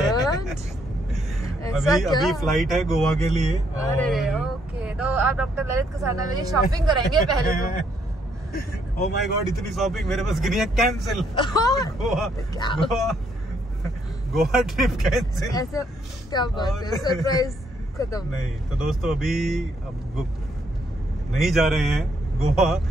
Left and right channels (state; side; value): normal; both; correlation 0.71